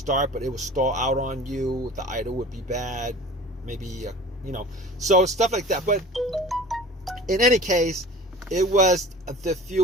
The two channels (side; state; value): both; normal; correlation 0.41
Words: but it would stall out on you. The idle would be bad, maybe, so stuff like that. But in any case, it was the fuel